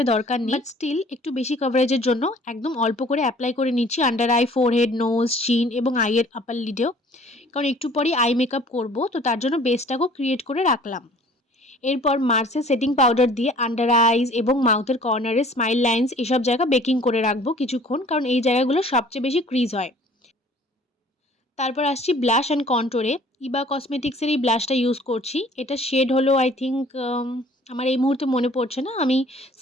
দরকার নেই, বাট স্টিল একটু বেশি কভারেজের জন্য একদম অল্প করে অ্যাপ্লাই করে নিচ্ছি আন্ডার আই, ফোরহেড, নোজ, চিন এবং আইয়ের আপার লিডেও, কারণ একটু পরেই আই মেকআপ করবো, তো তার জন্য বেসটাকেও ক্রিয়েট করে রাখলাম। এরপর মার্সের সেটিং পাউডার দিয়ে আন্ডার আইজ এবং মাউথের কর্নারে স্মাইল লাইন্স এসব জায়গা বেকিং করে রাখবো কিছুক্ষণ, কারণ এই জায়গাগুলো সবচেয়ে বেশি ক্রিজ হয়। তারপর আসছি ব্লাশ অ্যান্ড কন্ট্রোরে। ইবা কসমেটিক্সের এই ব্লাশটা ইউজ করছি। এটা শেড হলো আই থিঙ্ক, আমার এই মুহূর্তে মনে পড়ছে না, আমি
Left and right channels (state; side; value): normal; both; correlation 0.52